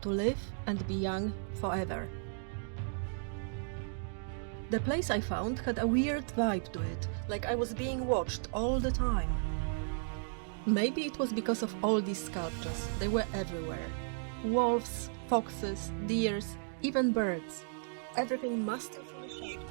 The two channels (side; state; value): left; silent; digital silence